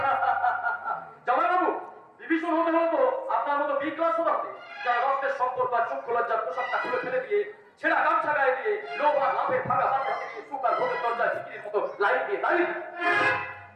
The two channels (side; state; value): both; identical; correlation 1.00